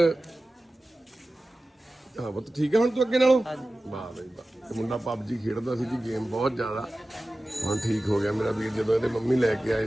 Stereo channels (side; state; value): both; normal; correlation 0.96